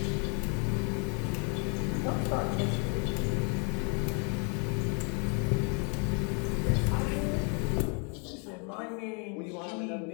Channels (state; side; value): quieter; right; 37.0 dB